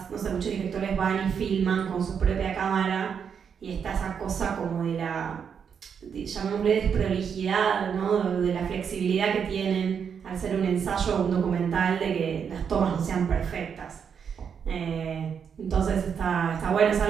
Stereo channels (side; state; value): left; quieter; 7.1 dB